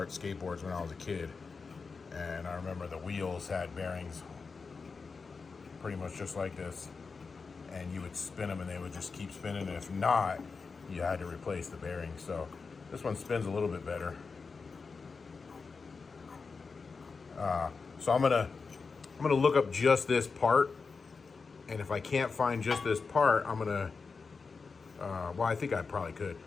skateboards when I was a kid, and I remember the wheels had bearings pretty much just like this, and you would spin them and they would just keep spinning, and if not, you had to replace the bearings. So this one spins a little bit better. So I'm gonna look up just this part. And if I can't find just this part, I'm gonna, well, I think I probably could,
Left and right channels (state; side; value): quieter; right; 4.8 dB